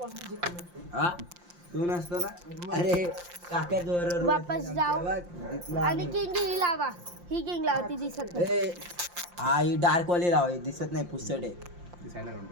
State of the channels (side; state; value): left; late; 5.7 ms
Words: हा तू नसतो ना. अरे काका जोर वापस जाऊ. जितला आणि आम्ही. किंग ही लावा. ही किंग लावा. ती दिसत नाही. ए, हा ही डार्क वाली लाव. ही दिसत नाही. पुस्तट आहे. ती साईडला काढून